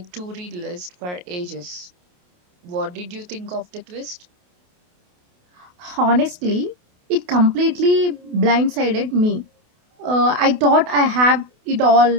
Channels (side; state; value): left; late; 28 ms